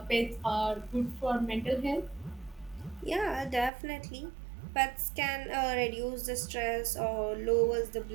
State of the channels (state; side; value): drops out; left; at 3.7 s